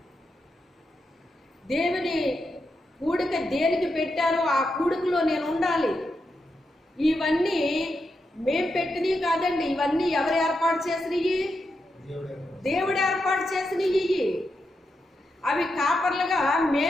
దేవుని కూడిక దేనికి పెట్టారో ఆ కూడికలో నేను ఉండాలి. ఇవన్నీ మేం పెట్టినవి కాదండి, ఇవన్నీ ఎవరు ఏర్పాటు చేసినవి? దేవుడు ఏర్పాటు చేసినవి. అవి కాపర్లుగా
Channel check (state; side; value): normal; both; correlation 0.85